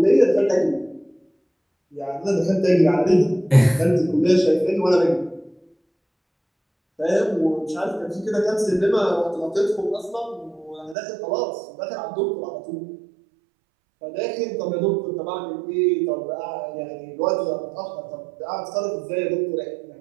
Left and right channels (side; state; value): left; drops out; at 11.0 s